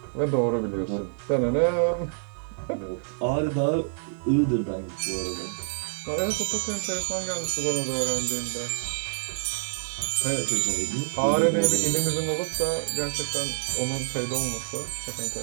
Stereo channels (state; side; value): silent; left; digital silence